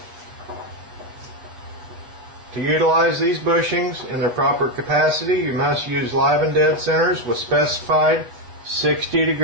To utilize these bushings in their proper capacity, you must use live and dead centers with specified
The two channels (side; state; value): left; late; 8.5 ms